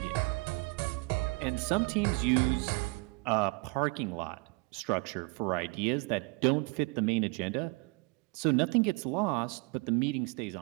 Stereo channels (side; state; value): left; quieter; 28.8 dB